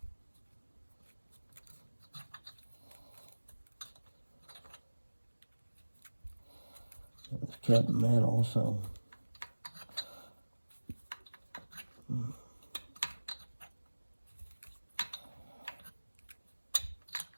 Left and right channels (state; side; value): inverted; both; correlation -1.00